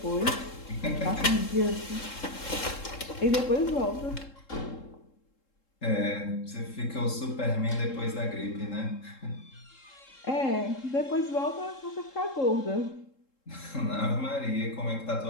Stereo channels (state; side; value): late; right; 3.7 ms